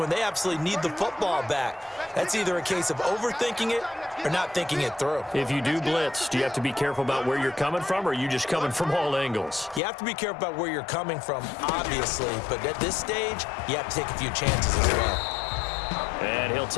they absolutely need the football back. That's either a case of overthinking it or not thinking it through. If you do blitz, do you have to be careful about where you're coming from, or are you just coming from all angles? You have to be careful about where you're coming from, obviously, but at this stage, you have to take a few chances as well. And he'll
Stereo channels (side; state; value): right; drops out; at 9.8 s